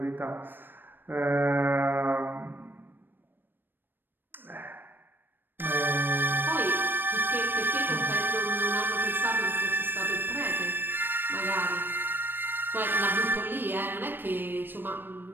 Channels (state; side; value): late; left; 0.095 ms